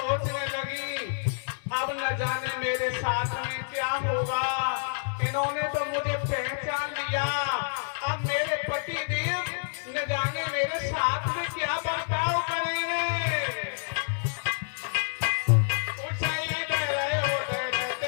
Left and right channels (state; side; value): silent; right; digital silence